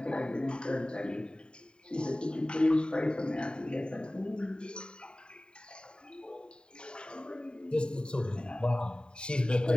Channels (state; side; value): late; right; 0.050 ms